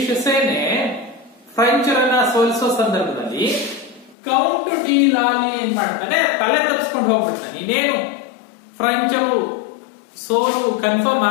ಸೇನೆ ಫ್ರೆಂಚರನ್ನ ಸೋಲಿಸೋ ಸಂದರ್ಭದಲ್ಲಿ ಕೌಂಟ್ ಡಿ ಲಾಲಿ ಏನ್ ಮಾಡ್ತಾನೆ, ತಲೆ ತಪ್ಪಿಸ್ಕೊಂಡು ಹೋಗ್ಬಿಡ್ತಾನೆ. ಇನ್ನೇನು ಫ್ರೆಂಚರು ಸೋಲು ಕನ್ಫರ್ಮ್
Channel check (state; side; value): drops out; right; at 4.2 s